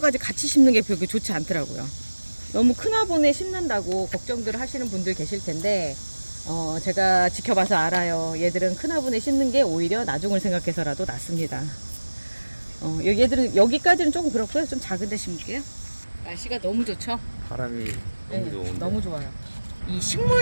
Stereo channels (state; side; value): inverted; both; correlation -1.00